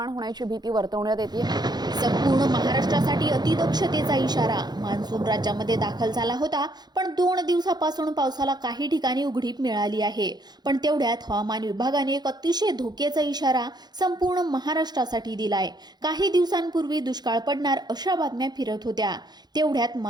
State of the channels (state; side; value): late; left; 0.20 ms